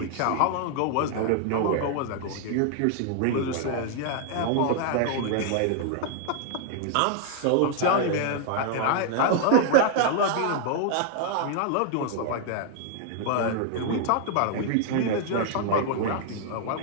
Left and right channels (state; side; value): different; both; correlation 0.00